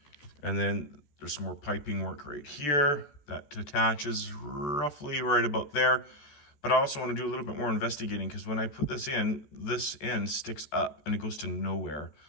And then there's some more piping work right here that attaches roughly right about there. But I also want to do a little bit more investigating because when I put this in, this end sticks up and it goes to nowhere.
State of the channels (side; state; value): right; late; 14 ms